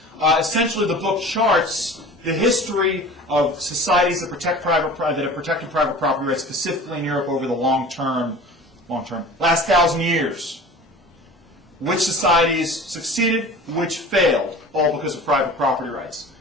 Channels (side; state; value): both; normal; correlation 0.40